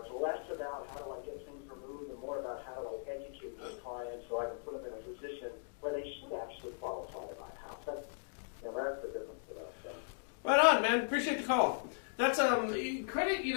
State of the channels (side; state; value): right; silent; digital silence